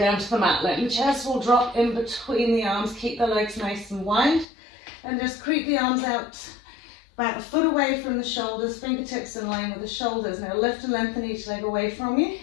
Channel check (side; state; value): right; drops out; at 4.5 s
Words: to the mat. Letting the chest will drop in between the arms. Keep the legs nice and wide. And just creep the arms out about a foot away from the shoulders, fingertips in line with the shoulders. Now lift and lengthen each leg away from you.